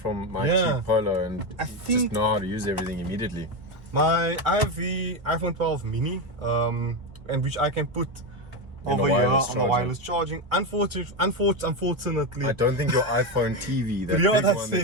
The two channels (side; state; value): left; late; 1.4 ms